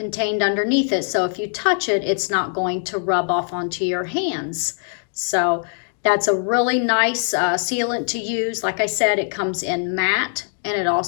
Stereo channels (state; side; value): silent; right; 65 dB below the other